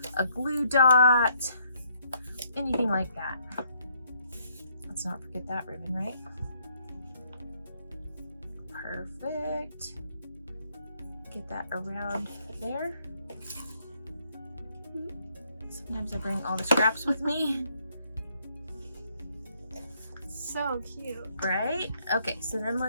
a glue dot, anything like that. Let's not forget that ribbon, right? Perfect. Get that around there. Sometimes I bring all the scraps with me. So cute. Right? Okay, so then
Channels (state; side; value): inverted; both; correlation -0.69